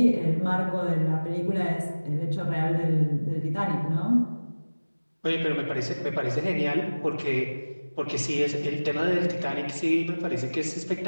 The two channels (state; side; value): inverted; both; correlation -1.00